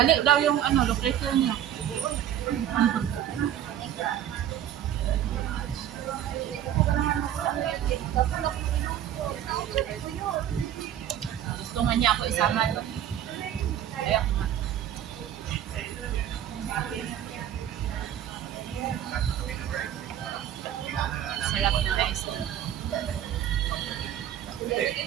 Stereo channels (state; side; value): quieter; left; 10.8 dB